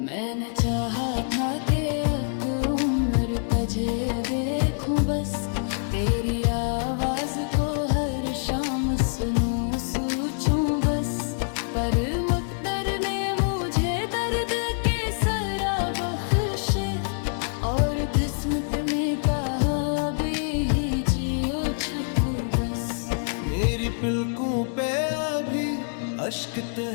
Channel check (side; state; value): right; silent; digital silence